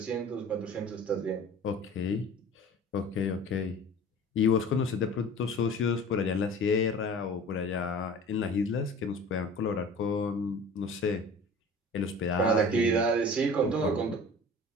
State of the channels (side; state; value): both; normal; correlation 0.42